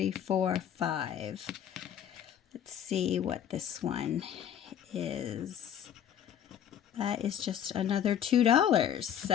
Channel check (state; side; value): quieter; right; 9.6 dB